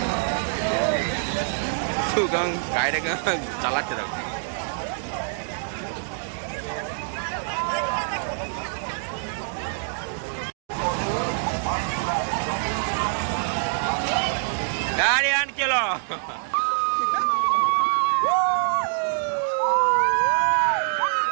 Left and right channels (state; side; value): silent; left; digital silence